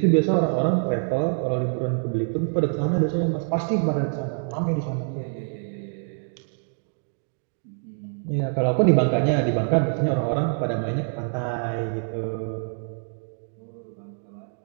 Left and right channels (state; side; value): silent; left; 61 dB below the other